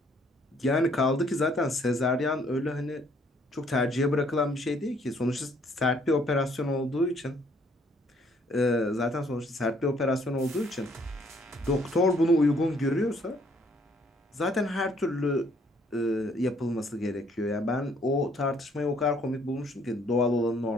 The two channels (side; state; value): both; normal; correlation 0.64